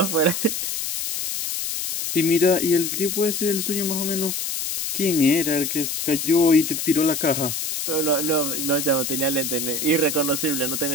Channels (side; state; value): left; noise; hiss, 3 dB below the sound